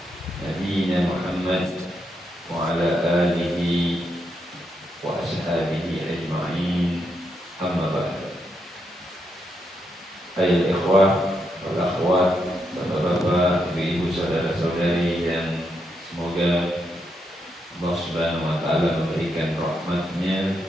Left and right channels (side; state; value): both; normal; correlation 0.81